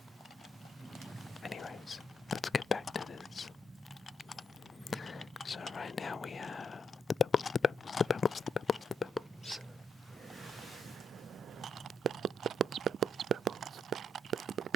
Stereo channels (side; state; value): both; normal; correlation 0.76